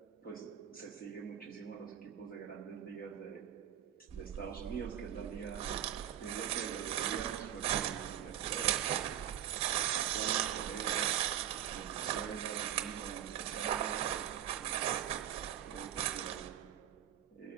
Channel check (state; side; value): quieter; left; 10.6 dB